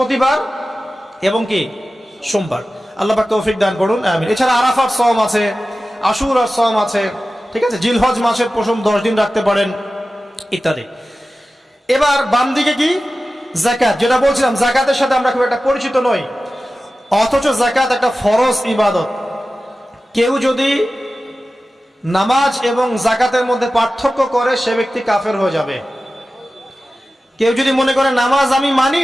এবং কি সোমবার। আল্লাহ পাক তৌফিক দান করুন, আমিন। এছাড়া আরাফার সওম আছে, আশুরার সওম আছে, ঠিক আছে? জিলহজ মাসের প্রথম 10 দিন রাখতে পারেন, ইত্যাদি। এবার বাম দিকে কি? যাকাত। যেটা বলছিলাম, যাকাতের সাথে আমরা খুব একটা পরিচিত নই, অথচ যাকাত একটা ফরজ ইবাদত। কেউ যদি নামাজ এবং জাকাতের মধ্যে পার্থক্য করে সে ব্যক্তি কাফের হয়ে যাবে। কেউ যদি মনে করে নামাজ আমি মানি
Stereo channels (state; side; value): normal; both; correlation 0.95